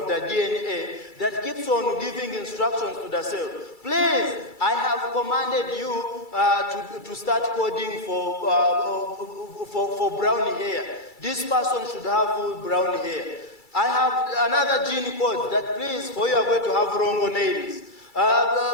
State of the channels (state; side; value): late; right; 2.3 ms